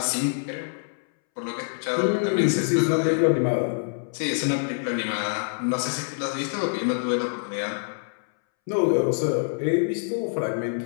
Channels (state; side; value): silent; right; 61 dB below the other